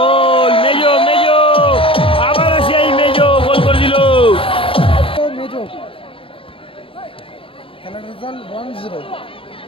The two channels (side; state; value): right; late; 0.26 ms